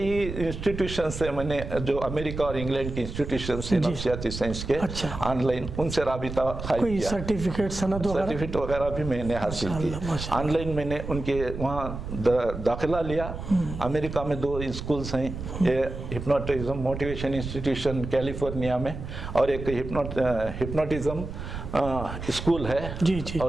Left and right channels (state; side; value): noise; right; rumble, 8 dB below the sound